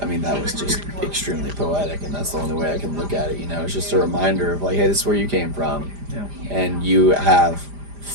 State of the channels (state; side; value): late; left; 5.0 ms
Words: I mean, that was just extremely poetic, and that's the only way I can look at it. You know, it's just a reminder of like, hey, this is where you came from, and you have